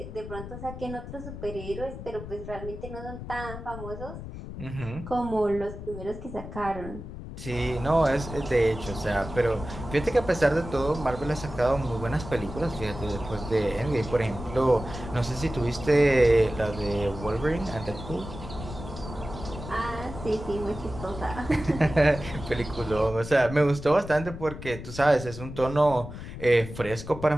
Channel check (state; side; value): noise; left; rumble, 10 dB below the sound